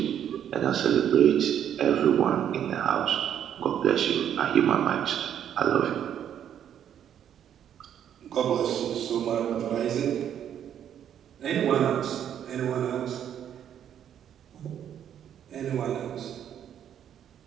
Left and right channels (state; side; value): quieter; left; 9.6 dB